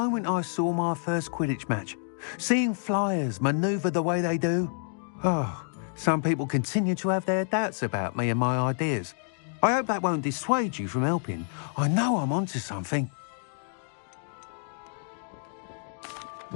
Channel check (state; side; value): silent; right; 59 dB below the other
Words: I saw my first Quidditch match. Seeing flyers manoeuvre the way they do. Oh, some people continue to have their doubts about me and my ideas. I hope that won't dissuade you from helping. I know I'm onto something.